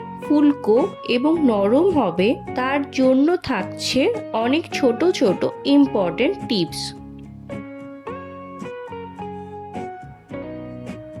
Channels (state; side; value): identical; both; correlation 1.00